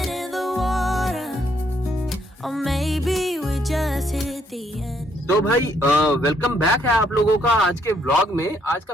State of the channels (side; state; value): both; normal; correlation 0.71